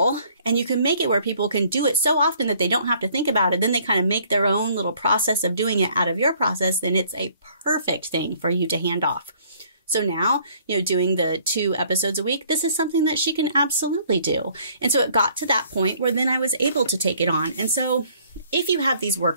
and you can make it where people can do it so often that they don't have to think about it, then they kind of make their own little process of doing it out of your process, then it's a perfect thing for you to hand off. So now, doing the 2 episodes a week, this is something that she can absolutely do. And so it got to that point where then I was able to take it on. And so if you have these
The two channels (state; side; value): inverted; both; correlation -0.60